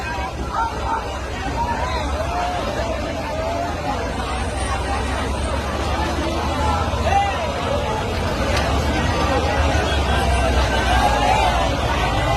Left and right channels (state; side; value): identical; both; correlation 1.00